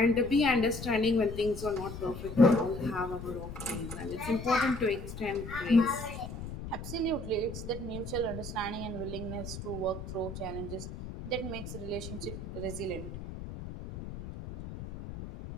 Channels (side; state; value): left; noise; rumble, 9 dB below the sound